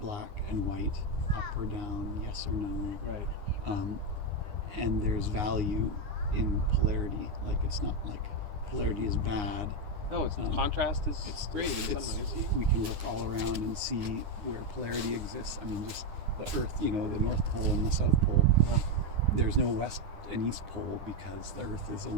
black and white, up or down, yes or no. Right. And there's value in polarity. Like it's not like polarity is bad. No, contrast is great in some ways. We can look all around and see where polarity exists. I mean, just the Earth, the North Pole and the South Pole. There's no West and East Pole because the Earth is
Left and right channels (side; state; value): left; late; 9.7 ms